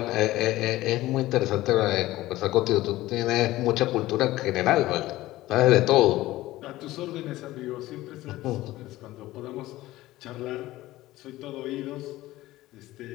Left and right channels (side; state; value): right; quieter; 16.8 dB